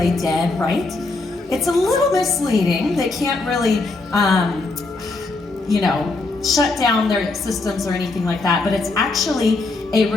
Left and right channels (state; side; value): quieter; right; 3.4 dB